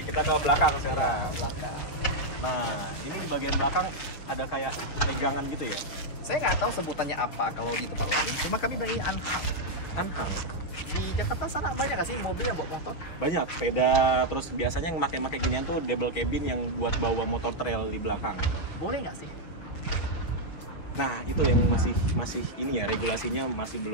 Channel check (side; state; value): right; late; 6.7 ms